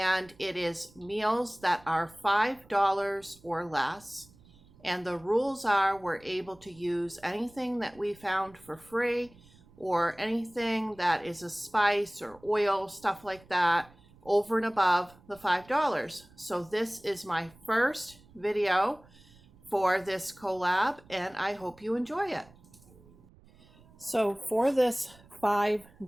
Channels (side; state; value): right; noise; rumble, 26 dB below the sound